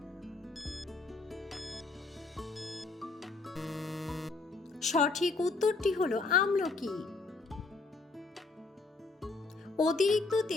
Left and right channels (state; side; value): quieter; right; 3.7 dB